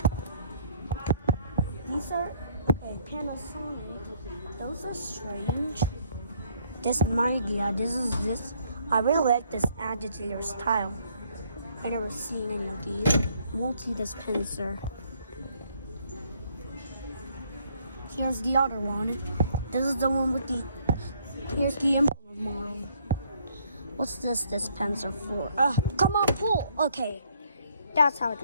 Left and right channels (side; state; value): both; inverted; correlation -0.67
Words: These are, okay, Panasonic. Those are strange. This Mightia, this. I really like this agitator style. I never seen any of these. Multi-dispenser. Here's the other one. This is the one with the, here's the import model. What's this dispenser for? Come on, pull. Okay, that's how it